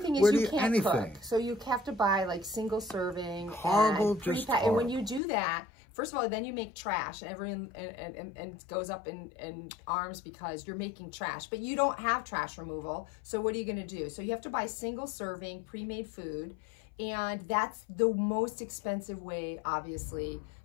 is you can't cook. So you have to buy like single serving. Horrible, just horrible. And when you do that, first of all, then you make trash, and everyone and goes up in arms because you're making trash. But you don't have trash removal. So what are you going to do? So you have to buy single serving pre-made food. And that's the most expensive way, obviously,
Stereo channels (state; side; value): drops out; right; at 5.2 s